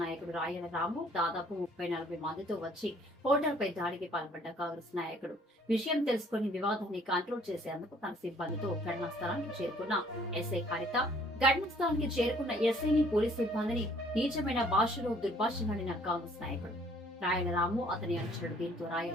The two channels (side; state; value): both; normal; correlation 0.59